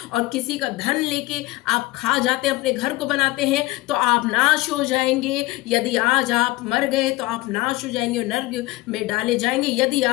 और किसी का धन लेके आप खा जाते हैं, अपने घर को बनाते हैं, तो आप नाश हो जाएंगे। यदि आज आप मर गए तो आप नाश हो जाएंगे, नर्क में डाले जाएंगे। यदि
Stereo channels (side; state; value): right; quieter; 19.9 dB